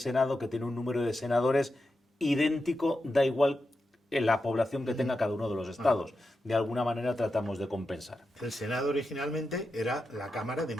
que tiene un número de senadores idéntico, da igual la población que tenga cada uno de los estados. De alguna manera tratamos de compensar. El Senado originalmente era la Cámara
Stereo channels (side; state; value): both; normal; correlation 0.89